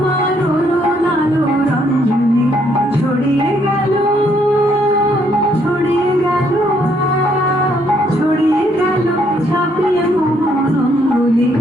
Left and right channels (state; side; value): normal; both; correlation 0.70